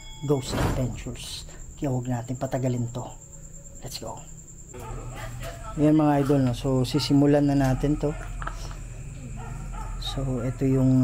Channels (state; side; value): identical; both; correlation 1.00